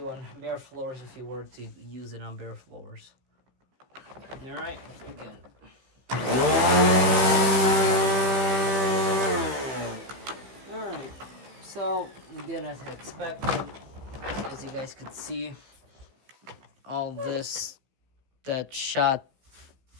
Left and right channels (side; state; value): left; late; 16 ms